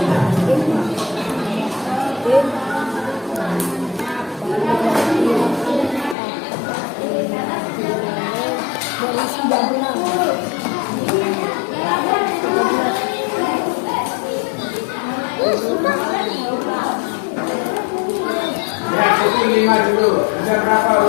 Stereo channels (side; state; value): right; drops out; at 6.2 s